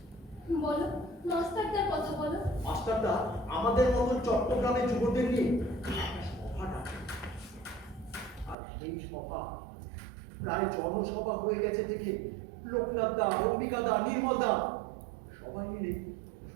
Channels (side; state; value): left; drops out; at 8.6 s